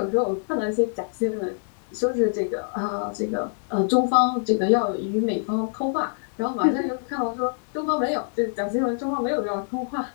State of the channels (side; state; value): right; silent; digital silence